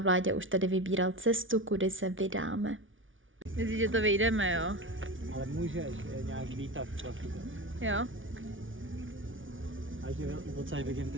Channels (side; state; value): left; late; 0.57 ms